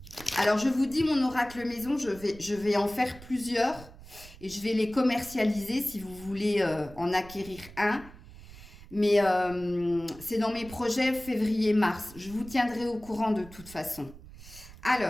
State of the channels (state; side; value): noise; right; rumble, 18 dB below the sound